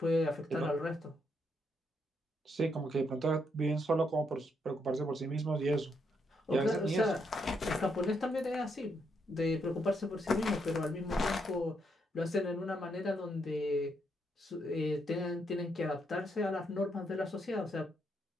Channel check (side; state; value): both; normal; correlation 0.77